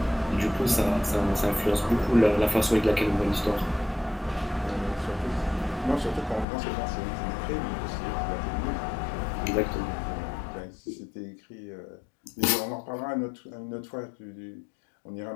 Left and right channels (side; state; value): right; drops out; at 6.5 s